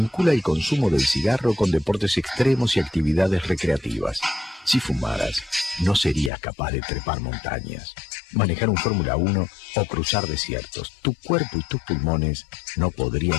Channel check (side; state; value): right; drops out; at 6.3 s